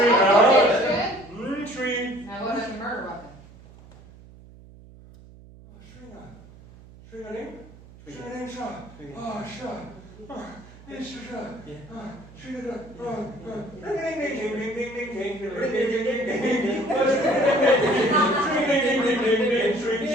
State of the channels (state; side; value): noise; right; hum, 21 dB below the sound